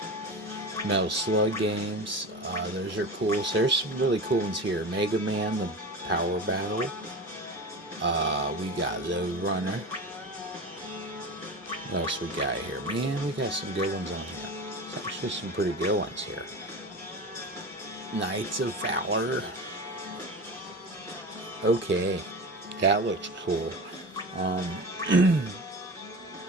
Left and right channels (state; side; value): normal; both; correlation 0.29